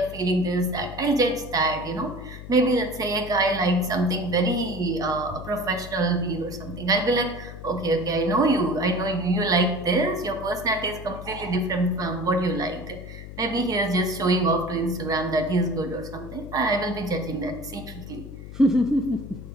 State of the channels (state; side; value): noise; left; hum, 13 dB below the sound